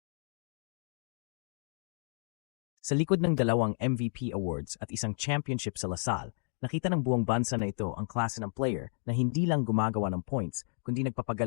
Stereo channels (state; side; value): silent; right; digital silence